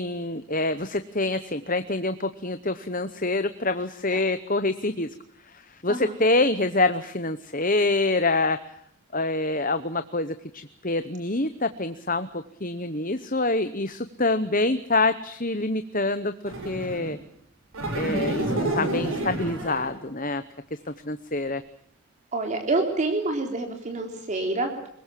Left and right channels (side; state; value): both; normal; correlation 0.02